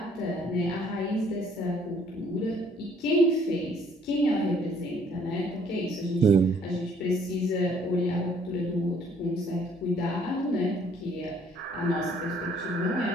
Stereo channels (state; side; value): normal; both; correlation 0.61